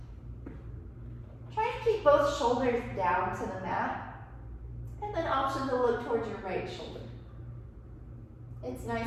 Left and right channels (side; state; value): both; identical; correlation 1.00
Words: Try to keep both shoulders down to the mat. And then option to look towards your right shoulder. It's